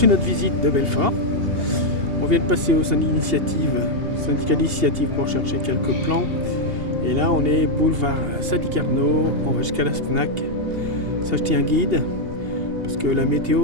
notre visite de Belfort. On vient de passer au syndicat d'initiative pour chercher quelques plans. Et là, on est boulevard Sadi Carnot. On va jusqu'à la Fnac s'acheter un guide. Parce que la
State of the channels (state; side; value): late; left; 2.8 ms